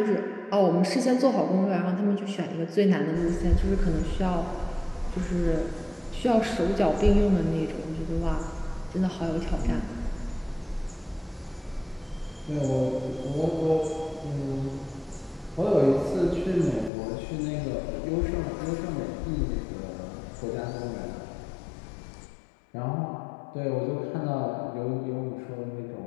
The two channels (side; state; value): right; drops out; at 16.9 s